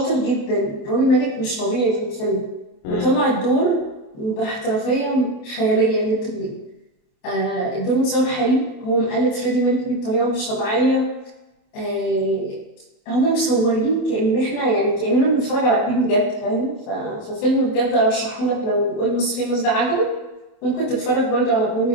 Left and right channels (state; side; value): late; right; 28 ms